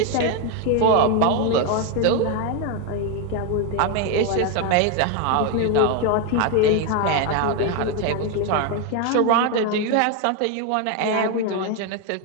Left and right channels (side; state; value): both; different; correlation 0.01